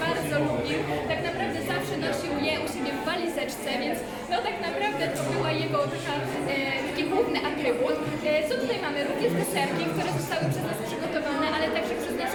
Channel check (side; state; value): both; identical; correlation 1.00